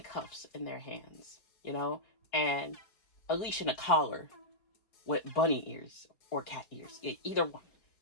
in their hands, and a leash and a collar with bunny ears or cat ears, either one.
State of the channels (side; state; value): right; late; 4.9 ms